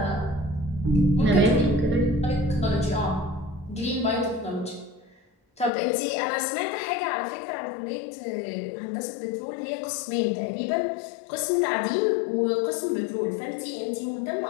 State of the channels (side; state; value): right; drops out; at 5.7 s